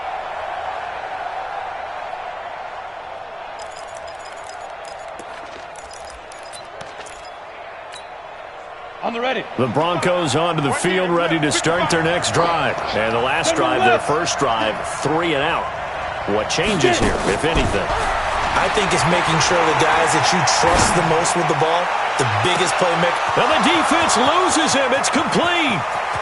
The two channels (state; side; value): identical; both; correlation 1.00